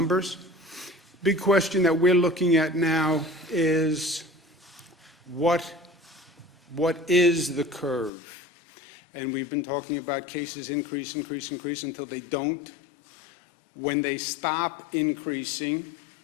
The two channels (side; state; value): right; drops out; at 8.1 s